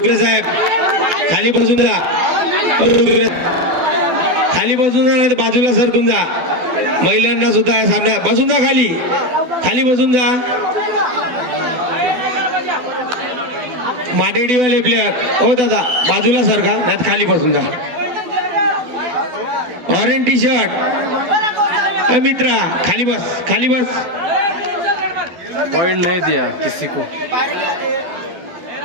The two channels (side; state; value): left; late; 12 ms